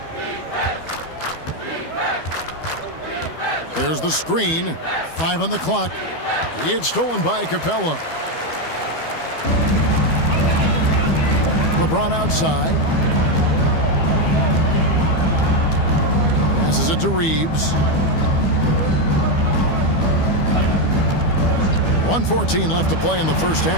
There's the screen. 5 on the clock. It's stolen by Capella. LeBron outside. Passes it to Reeves. 1:14 left to play in the first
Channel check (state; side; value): late; right; 12 ms